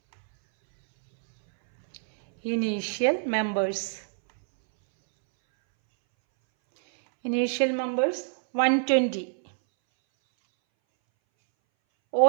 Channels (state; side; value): silent; left; 61 dB below the other